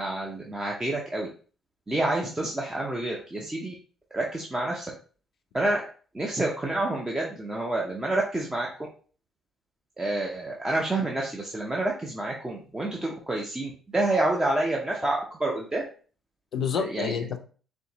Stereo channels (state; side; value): normal; both; correlation 0.80